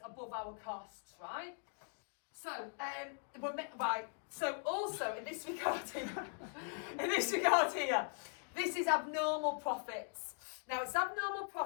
above our costs, right? So, right. So also in this regard here, this is abnormal profits. Now it's abnormal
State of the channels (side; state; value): right; silent; 51 dB below the other